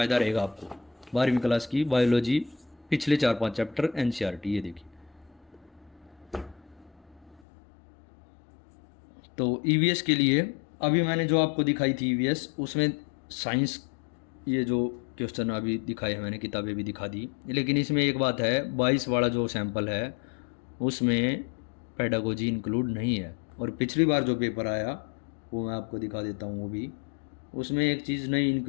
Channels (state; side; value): drops out; right; at 7.4 s